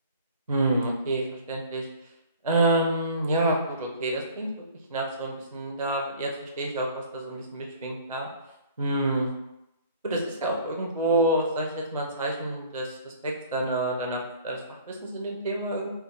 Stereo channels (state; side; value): inverted; both; correlation -0.49